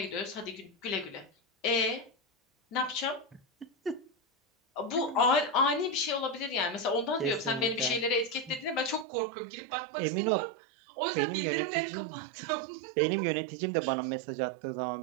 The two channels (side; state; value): left; drops out; at 9.1 s